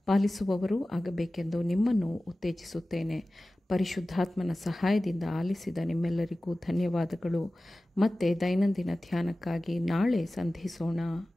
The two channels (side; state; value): both; normal; correlation 0.96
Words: ಪಾಲಿಸುವವರು ಆಗಬೇಕೆಂದು ನಿಮ್ಮನ್ನು ಉತ್ತೇಜಿಸುತ್ತೇನೆ. ಪರಿಶುದ್ಧಾತ್ಮನ ಸಹಾಯದಿಂದ ಆಲಿಸಿದ ನಿಮ್ಮೆಲ್ಲರಿಗೂ ಧನ್ಯವಾದಗಳು. ಮತ್ತೆ ದೈನಂದಿನ ಧ್ಯಾನಕ್ಕಾಗಿ ನಾಳೆ ಸಂಧಿಸೋಣ.